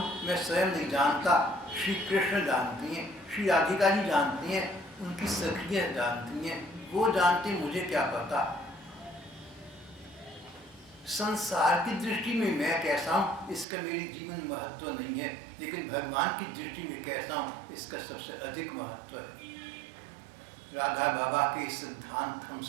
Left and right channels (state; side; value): drops out; left; at 13.7 s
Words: मैं स्वयं नहीं जानता। श्री कृष्ण जानती हैं, श्री राधिका जी जानती हैं, उनकी सखियाँ जानती हैं, वो जानती, मुझे क्या पता। संसार की दृष्टि में मैं कैसा हूँ इसका मेरे जीवन में महत्व नहीं है, लेकिन भगवान की दृष्टि में कैसा हूँ इसका सबसे अधिक महत्व है। राधा बाबा के सिद्धांत हम